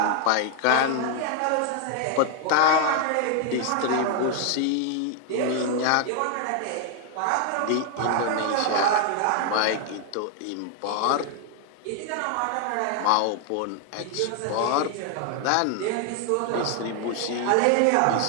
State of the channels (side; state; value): both; different; correlation 0.00